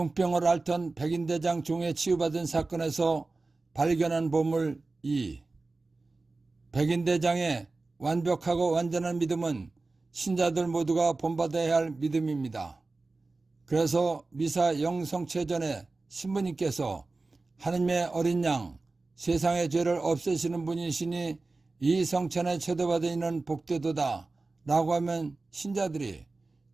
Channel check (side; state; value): left; quieter; 3.5 dB